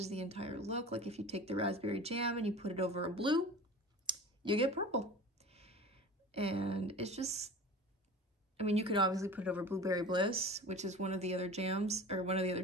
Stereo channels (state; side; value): normal; both; correlation 0.37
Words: the entire look. Like if you take the raspberry jam and you put it over a blue, you get purple. And it's just, I mean, you could obviously put it over Blueberry Bliss, which is one of the other jams, or one of the other